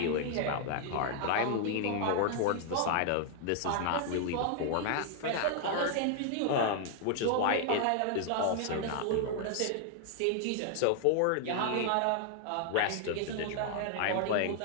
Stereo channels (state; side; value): different; both; correlation 0.00